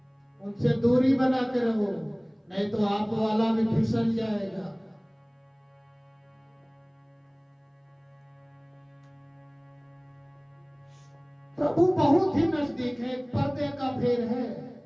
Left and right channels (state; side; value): identical; both; correlation 1.00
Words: उनसे दूरी बना के रहो, नहीं तो आप वाला भी फिसल जाएगा। प्रभु बहुत ही नजदीक है, पर्दे का फेर है।